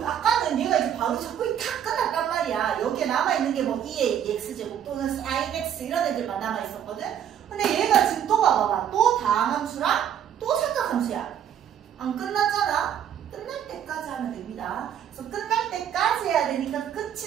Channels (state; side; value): quieter; left; 9.5 dB